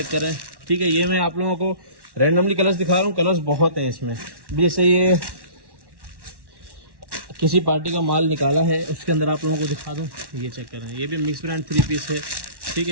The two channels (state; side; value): late; left; 1.1 ms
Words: करें, ठीक है। ये मैं आप लोगों को रैंडमली कलर्स दिखा रहा हूँ, कलर्स बहुत हैं इसमें। जैसे ये किसी पार्टी का माल निकाला है, उसके अंदर आप लोगों को दिखा दूँ, ये चेक करें। ये भी मिक्स ब्रांड 3 पीस है, ठीक